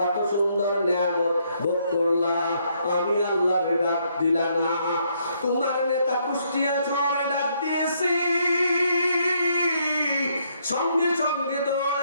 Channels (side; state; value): both; inverted; correlation -0.72